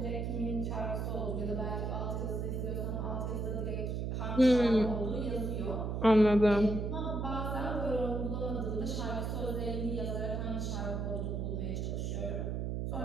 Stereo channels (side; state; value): right; noise; hum, 1 dB below the sound